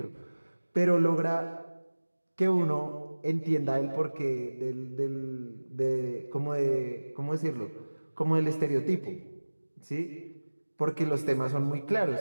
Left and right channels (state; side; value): inverted; both; correlation -1.00